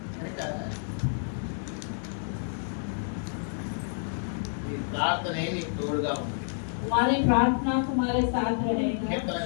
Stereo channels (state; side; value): silent; right; digital silence